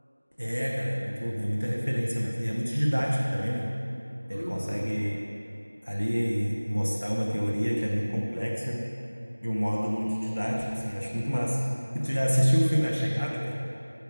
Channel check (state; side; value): inverted; both; correlation -1.00